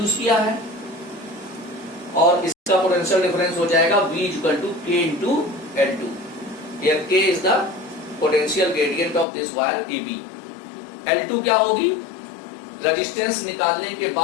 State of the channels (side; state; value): right; drops out; at 9.2 s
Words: किया है, और इसका पोटेंशियल डिफरेंस हो जाएगा V equal to K into L2। Here K is the potential gradient of this wire AB। L2 क्या होगी, रेजिस्टेंस निकालने के